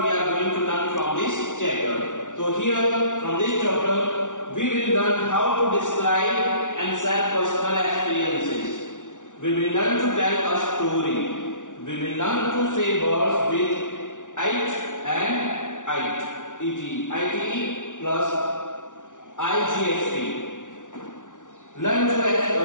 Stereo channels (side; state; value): right; late; 0.87 ms